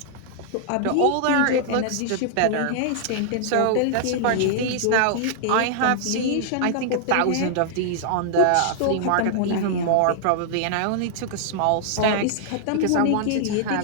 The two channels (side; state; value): both; different; correlation -0.01